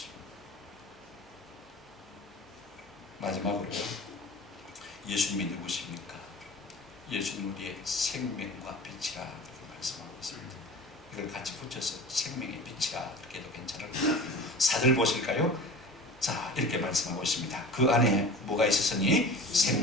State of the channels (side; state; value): both; normal; correlation 0.37